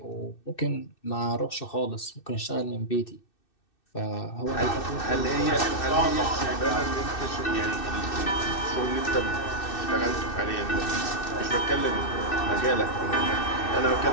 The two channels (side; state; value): right; late; 2.6 ms